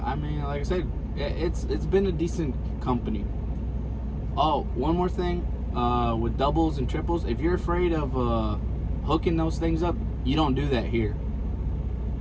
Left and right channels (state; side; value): identical; both; correlation 1.00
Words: I mean, like I said, it's been a decent company. Oh, one more thing, with doubles and triples, if you're afraid of hooking those things up, you don't do that here.